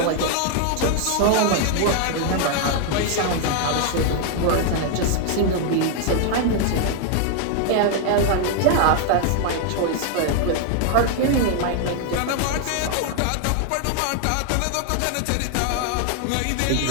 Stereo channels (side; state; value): both; different; correlation 0.00